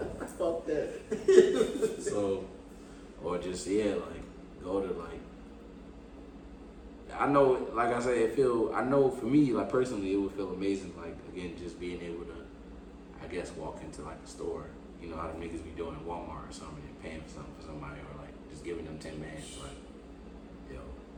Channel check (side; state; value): both; identical; correlation 1.00